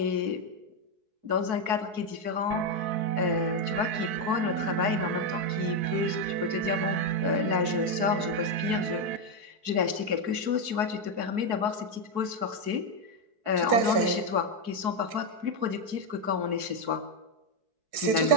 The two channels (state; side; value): late; left; 4.6 ms